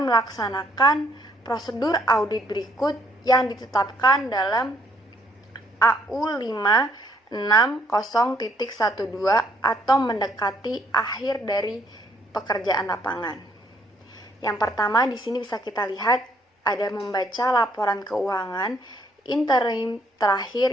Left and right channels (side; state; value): both; normal; correlation 0.66